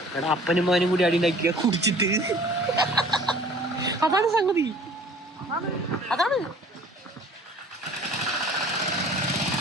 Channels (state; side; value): normal; both; correlation 0.50